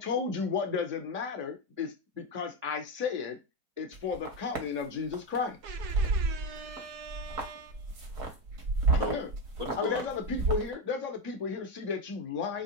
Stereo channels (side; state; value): left; late; 4.7 ms